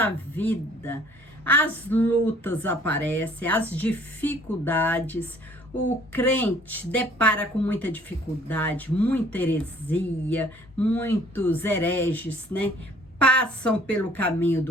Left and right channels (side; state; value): both; normal; correlation 0.56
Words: vida, as lutas aparecem, as dificuldades. O crente depara com muita dificuldade, muita heresia, muitos hereges, né? Passam pelo caminho